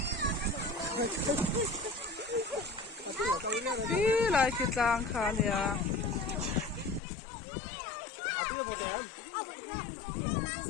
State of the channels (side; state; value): right; drops out; at 7.0 s